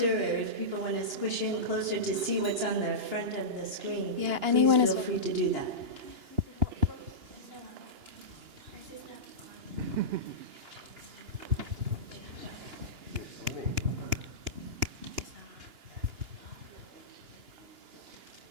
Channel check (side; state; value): left; late; 2.9 ms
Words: or if people want to squish in closer to see what's on the front of the screen, Yeah, anyone please is feel free to do that.